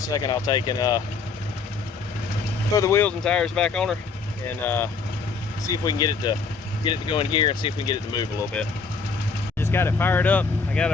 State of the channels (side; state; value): right; quieter; 4.7 dB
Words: a second, I'll take and throw the wheels and tires back on her and see if we can get it to go in gear and see if we can get it to move a little bit. Just got it fired up. I got